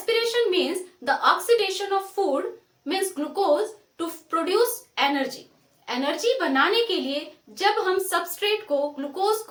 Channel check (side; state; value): both; identical; correlation 1.00